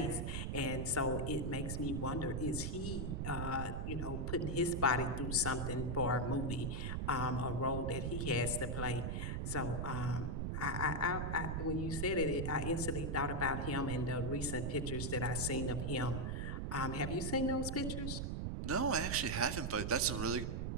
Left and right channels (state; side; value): noise; right; rumble, 1 dB below the sound